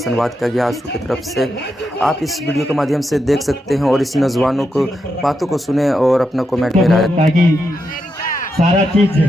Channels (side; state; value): both; normal; correlation 0.84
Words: किया गया आंसू की तरफ से। आप इस वीडियो के माध्यम से देख सकते हैं और इस नौजवानों को बातों को सुने और अपना कमेंट में राय। ताकि सारा चीज